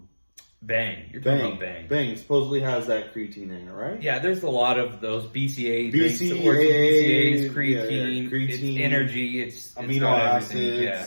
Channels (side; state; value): both; inverted; correlation -1.00